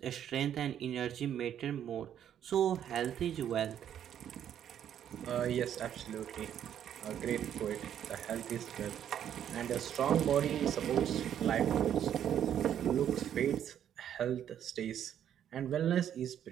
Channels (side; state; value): left; quieter; 9.9 dB